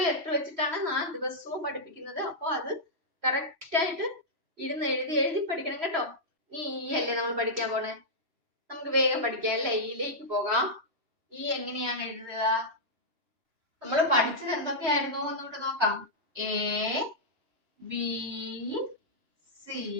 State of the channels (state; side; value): late; left; 3.1 ms